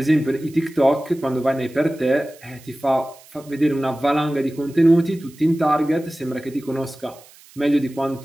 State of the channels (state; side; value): noise; right; hiss, 24 dB below the sound